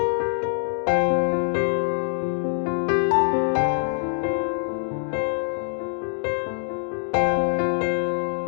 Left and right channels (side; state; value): right; silent; digital silence